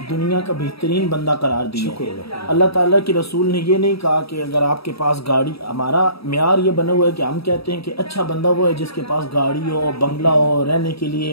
दुनिया का बेहतरीन बंदा करार दिया। अल्लाह ताला के रसूल ने ये नहीं कहा कि अगर आपके पास गाड़ी, हमारा म्यार ये बना हुआ है कि हम कहते हैं कि अच्छा बंदा वो है जिसके पास गाड़ी हो, बंगला हो, रहने के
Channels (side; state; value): right; late; 0.77 ms